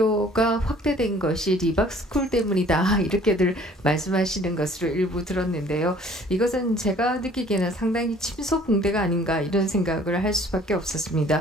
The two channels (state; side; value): normal; both; correlation 0.54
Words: 확대된 것이 리박스쿨 때문이다 이렇게들 말씀하시는 것으로 일부 들었는데요. 이것은 제가 느끼기에는 상당히 침소봉대가 아닌가 이런 생각을 할 수밖에